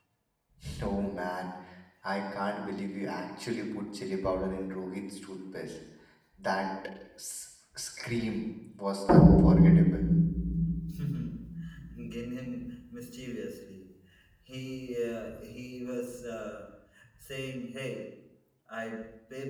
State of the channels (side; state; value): both; identical; correlation 1.00